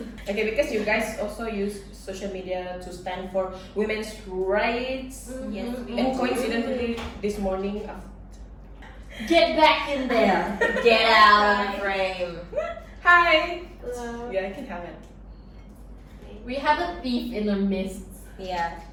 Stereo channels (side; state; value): both; identical; correlation 1.00